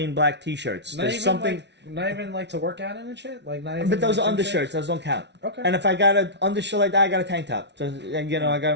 black T-shirts. There's something. Not even like to work out in and shit. Like not even. But those like are undershirts. Those don't count. Okay. And if I got an undershirt like that, I got a tank top. So, you know, I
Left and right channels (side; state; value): left; late; 0.50 ms